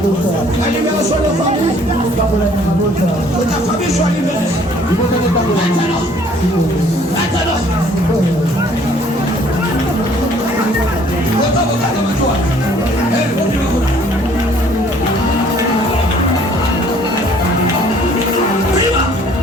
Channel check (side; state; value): both; normal; correlation 0.58